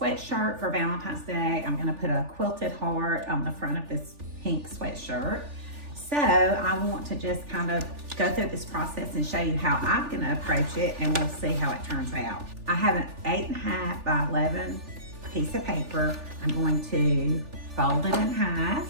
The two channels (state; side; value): late; left; 3.4 ms